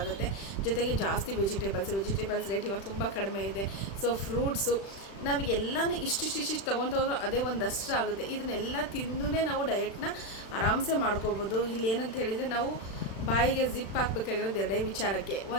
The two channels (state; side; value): late; right; 36 ms